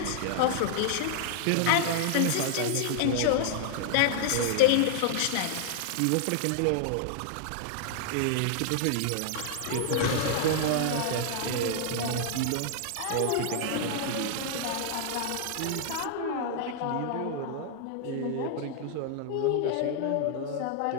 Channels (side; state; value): both; different; correlation -0.01